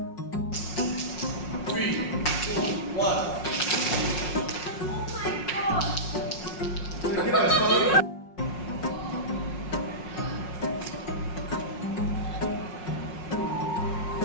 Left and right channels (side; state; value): right; late; 5.5 ms